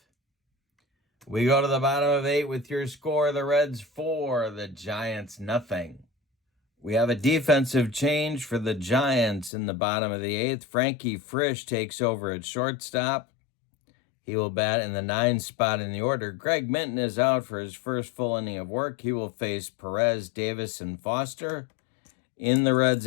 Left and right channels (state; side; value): drops out; right; at 9.5 s